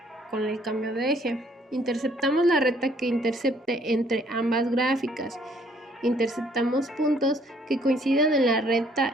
con el cambio de eje. Interceptamos la recta que intercepte entre ambas gráficas. Interceptamos puntos que coincidan en la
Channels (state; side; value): normal; both; correlation 0.63